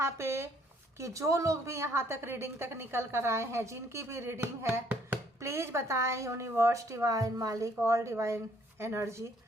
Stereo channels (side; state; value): both; normal; correlation 0.64